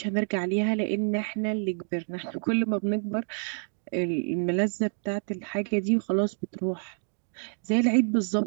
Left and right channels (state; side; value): silent; left; 59 dB below the other